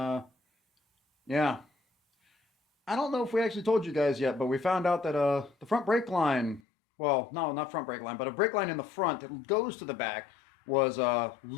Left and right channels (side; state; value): right; drops out; at 6.6 s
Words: yeah. I don't know if we actually told you guys yet, but we found out that the front brake line, well, no, not front brake line, but a brake line in the front that goes to the back was